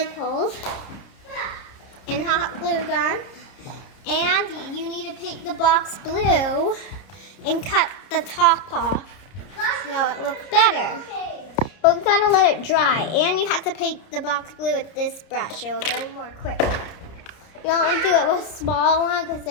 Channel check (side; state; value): right; late; 30 ms